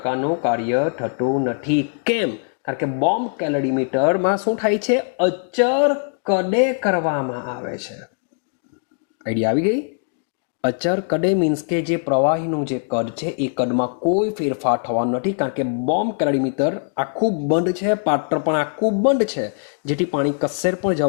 કાર્ય થતું નથી. કેમ? કારણ કે બોમ્બ કેલરીમીટરમાં શું થાય છે? અચર કદે કરવામાં આવે છે. આઈડિયા આવી ગઈ? અચર કદે મીન્સ કે જે પ્રવાહીનું જે કદ છે એ કદમાં કોઈ ફેરફાર થવાનો નથી, કારણ કે બોમ્બ કેલરીમીટર આખું બંધ છે, પાત્ર પણ આખું બંધ છે, જેથી પાણી કશે પણ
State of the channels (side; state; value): right; silent; digital silence